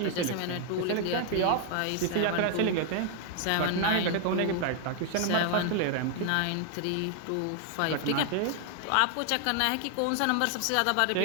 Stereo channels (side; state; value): both; different; correlation 0.00